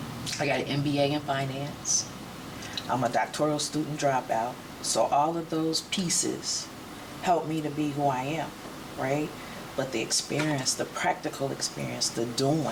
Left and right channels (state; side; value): identical; both; correlation 1.00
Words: I got an MBA in finance. I'm a doctoral student dropout. So all of those pieces help me to be who I am, right? But the experience, the practical experience, the